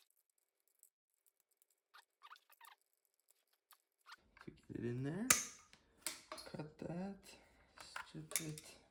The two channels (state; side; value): identical; both; correlation 1.00